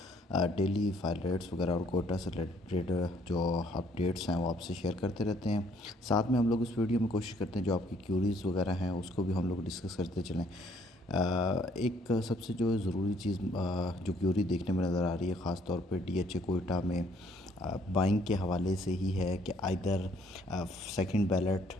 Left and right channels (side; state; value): both; normal; correlation 0.64